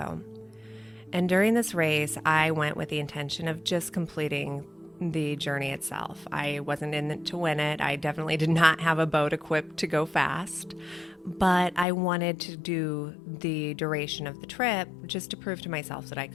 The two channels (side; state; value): right; drops out; at 11.9 s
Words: And during this race, I went with the intention of just completing the journey itself. I wasn't in it to win it. I definitely did not have a boat equipped to go fast, but I wanted to do the duration of the trip just to prove to myself that I